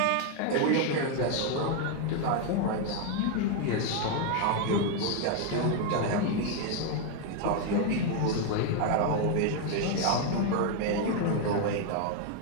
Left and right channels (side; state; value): both; different; correlation 0.01